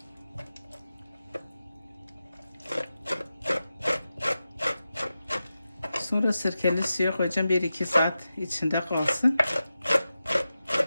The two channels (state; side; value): inverted; both; correlation -0.92